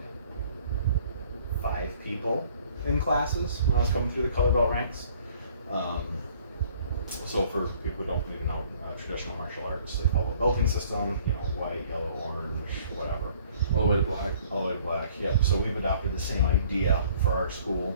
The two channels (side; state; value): both; inverted; correlation -0.57